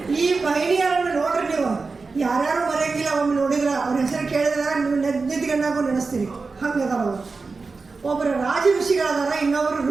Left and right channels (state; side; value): quieter; left; 4.2 dB